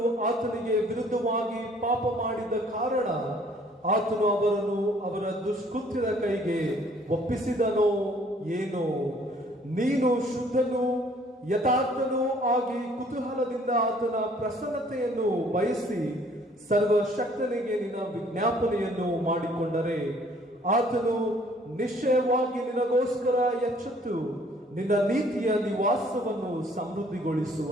ಆತನಿಗೆ ವಿರುದ್ಧವಾಗಿ ಪಾಪ ಮಾಡಿದ ಕಾರಣ ಆತನು ಅವರನ್ನು ಅವರ ದುಷ್ಕೃತ್ಯದ ಕೈಗೆ ಒಪ್ಪಿಸಿದನೋ ಏನೋ? ನೀನು ಶುದ್ಧನೂ ಯಥಾರ್ಥನೂ ಆಗಿ ಕುತೂಹಲದಿಂದ ಆತನ ಪ್ರಸನ್ನತೆಯನ್ನು ಬಯಸಿ ಸರ್ವಶಕ್ತನಿಗೆ ನಿನ್ನ ವಿಜ್ಞಾಪನೆಯನ್ನು ಮಾಡಿಕೊಂಡರೆ ಆತನು ನಿಶ್ಚಯವಾಗಿ ನಿನಗೋಸ್ಕರ ಎಚ್ಚೆತ್ತು ನಿನ್ನ ನೀತಿಯ ನಿವಾಸವನ್ನು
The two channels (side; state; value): both; normal; correlation 0.59